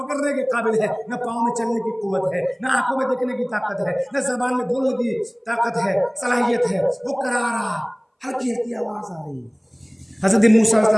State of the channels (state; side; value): identical; both; correlation 1.00